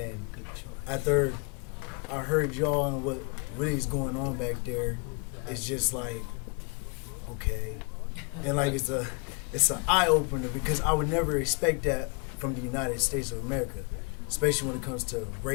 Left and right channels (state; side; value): quieter; right; 34.1 dB